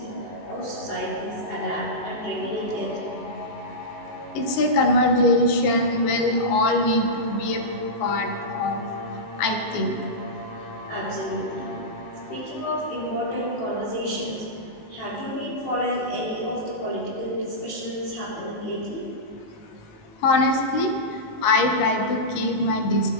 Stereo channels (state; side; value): late; right; 19 ms